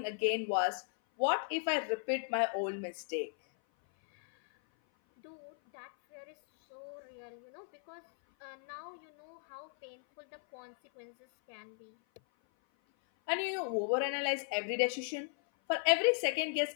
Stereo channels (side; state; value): right; silent; 54 dB below the other